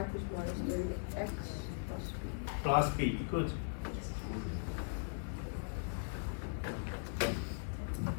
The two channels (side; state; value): right; silent; 52 dB below the other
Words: equals minus 3, x plus plus b. Good.